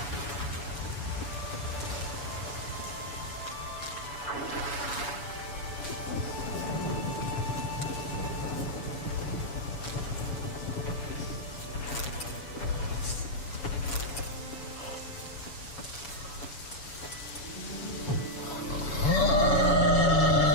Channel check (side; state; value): right; late; 7.0 ms